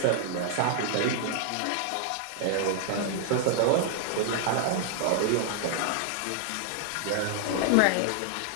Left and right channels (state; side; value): different; both; correlation 0.00